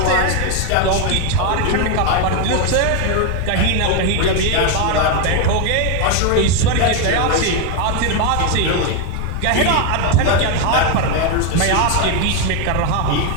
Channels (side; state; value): both; different; correlation 0.01